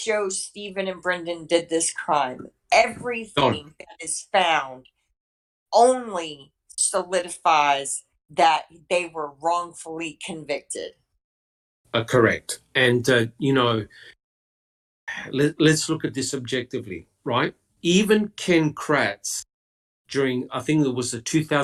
Stephen and Brendan did this crime. Everything that is found only solidifies that they were wrongfully convicted. Correct. And, let's look at this objectively, right? Even Ken Kratz, during, I think it was the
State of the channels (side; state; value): both; identical; correlation 1.00